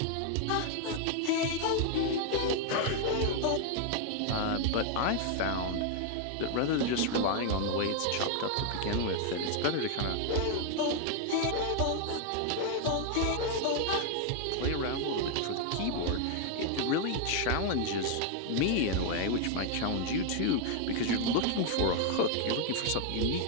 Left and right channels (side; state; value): both; different; correlation 0.00